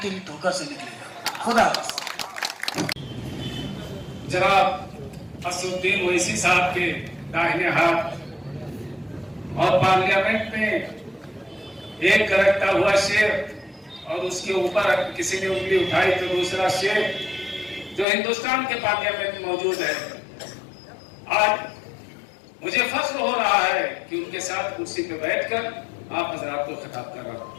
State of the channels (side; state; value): right; drops out; at 18.1 s